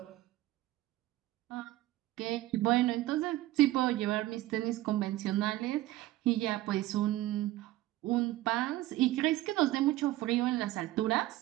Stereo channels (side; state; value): left; quieter; 16.3 dB